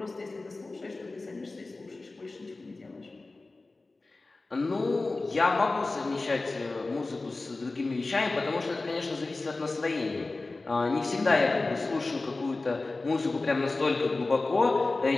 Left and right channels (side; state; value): right; quieter; 3.3 dB